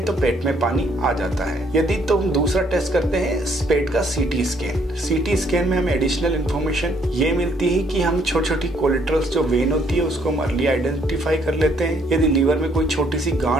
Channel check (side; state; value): both; normal; correlation 0.66